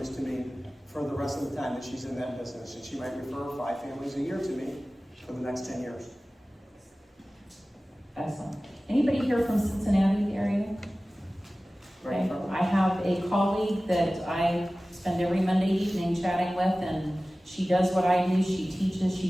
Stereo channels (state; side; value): normal; both; correlation 0.97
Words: to me for the rest of the time that she's in that business, and she might refer 5 families a year to me for the next 10 years. Excellent. Anybody here from Cincinnati area? Okay. I have a colleague that I spend every Monday evening chatting with, and she does what I do. She teaches,